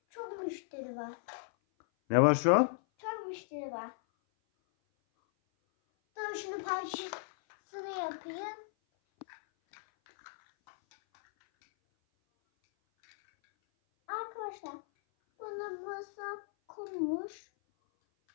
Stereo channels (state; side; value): silent; right; 54 dB below the other